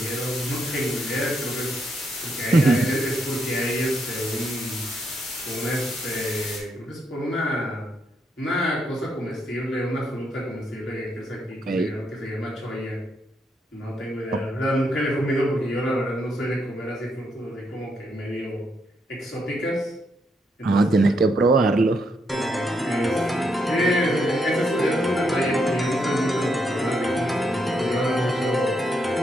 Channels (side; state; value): both; normal; correlation 0.78